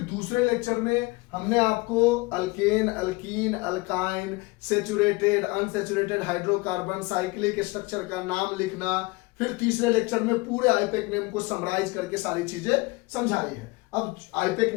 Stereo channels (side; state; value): right; quieter; 24.3 dB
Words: दूसरे लेक्चर में हमने आपको alkane, alkyne, alkyne, saturated, unsaturated hydrocarbon, cyclic structure का नाम लिखना। फिर तीसरे लेक्चर में पूरे आईपेक नेम को समराइज करके सारी चीजें समझाई है। अब आईपेक